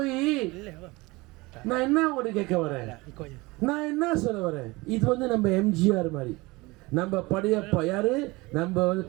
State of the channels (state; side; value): quieter; left; 22.8 dB